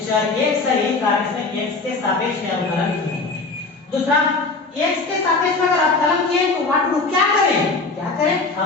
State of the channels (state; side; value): quieter; right; 3.8 dB